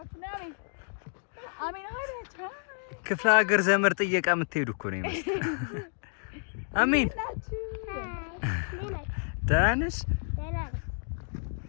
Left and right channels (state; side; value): silent; right; 58 dB below the other